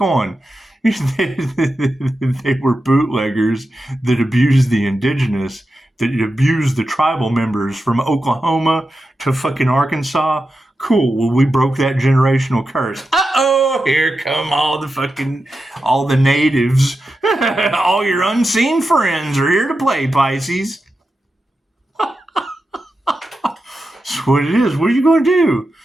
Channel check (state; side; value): normal; both; correlation 0.90